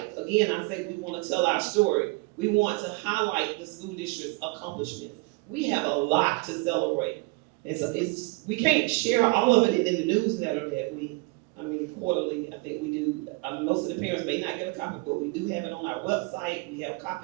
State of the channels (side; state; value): left; quieter; 26.7 dB